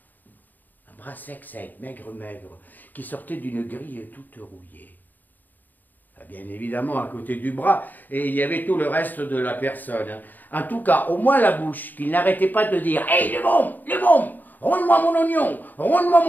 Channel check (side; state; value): right; late; 0.087 ms